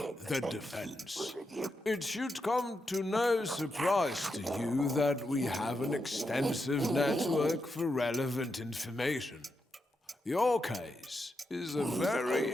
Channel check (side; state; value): both; normal; correlation 0.85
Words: the defense. It should come to no surprise to you that we have an extensive network for relevant information. Your case is a very